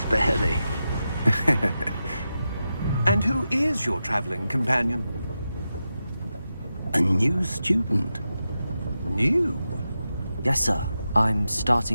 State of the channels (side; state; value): both; inverted; correlation -0.90